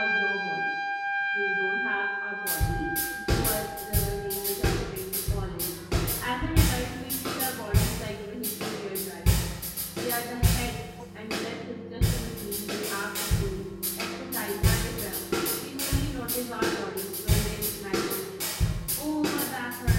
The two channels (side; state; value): both; identical; correlation 1.00